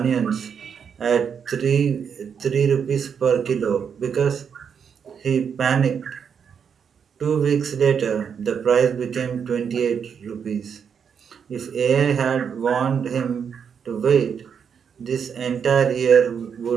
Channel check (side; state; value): left; quieter; 7.1 dB